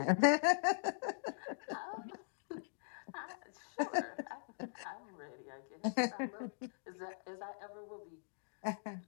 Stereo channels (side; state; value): right; silent; digital silence